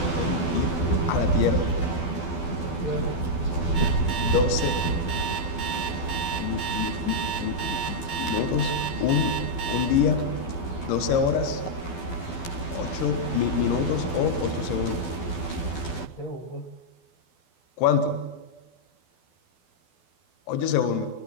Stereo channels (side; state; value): right; late; 12 ms